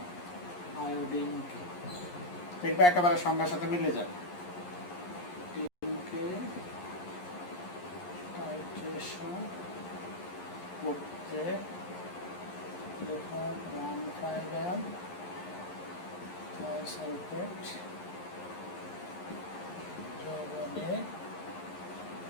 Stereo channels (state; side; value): late; right; 11 ms